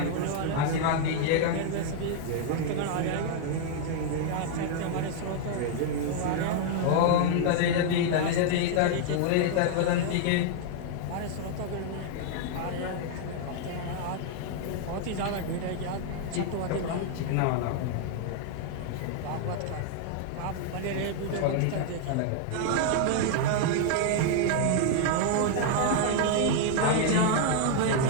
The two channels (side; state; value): both; different; correlation 0.00